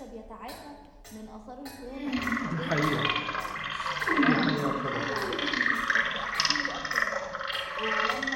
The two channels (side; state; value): both; identical; correlation 1.00